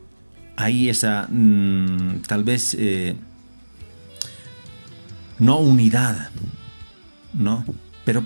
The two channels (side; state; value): both; inverted; correlation -1.00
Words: Hay esa tal vez no unidad, ¿no? Pero